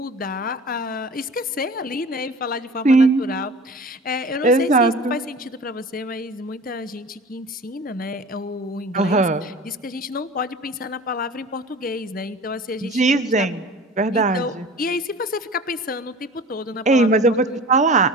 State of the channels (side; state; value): both; normal; correlation 0.40